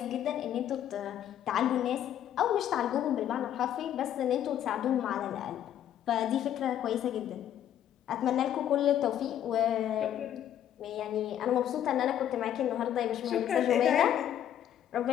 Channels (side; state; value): right; quieter; 10.7 dB